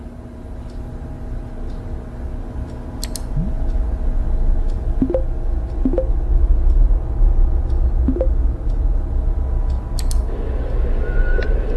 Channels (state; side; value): identical; both; correlation 1.00